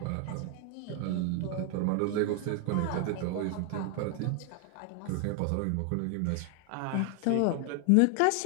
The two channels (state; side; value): different; both; correlation 0.00